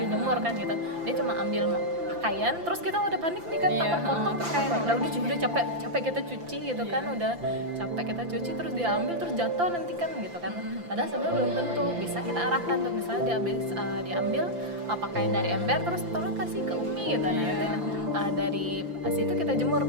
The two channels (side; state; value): left; late; 5.8 ms